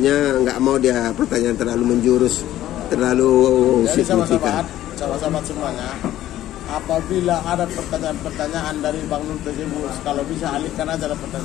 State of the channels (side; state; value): right; quieter; 13.4 dB